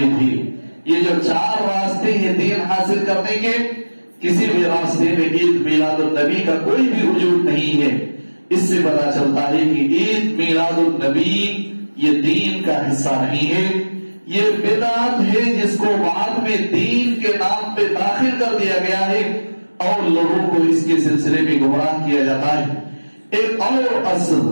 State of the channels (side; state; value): both; inverted; correlation -1.00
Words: ہے۔ یہ جو 4 راستے ہیں دین حاصل کرنے کے، کسی بھی راستے میں عید میلاد النبی کا کوئی بھی وجود نہیں ہے۔ اس سے پتا چلتا ہے کہ عید میلاد النبی یہ دین کا حصہ نہیں ہے، یہ بدعت ہے جس کو بعد میں دین کے نام پہ داخل کر دیا گیا ہے اور لوگوں کو اس کے سلسلے میں گمراہ کیا جاتا ہے۔ ایک اور اصل،